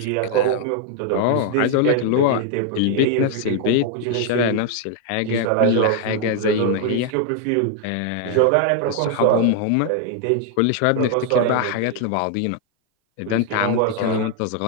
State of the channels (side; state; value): both; different; correlation 0.00